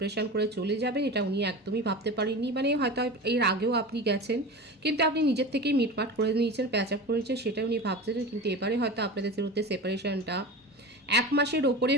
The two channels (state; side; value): normal; both; correlation 0.30